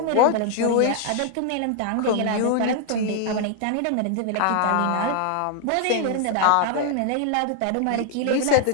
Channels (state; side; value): different; both; correlation 0.00